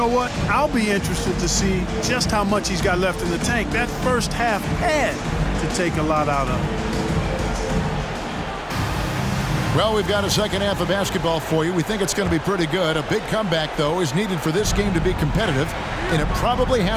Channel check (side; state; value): both; identical; correlation 1.00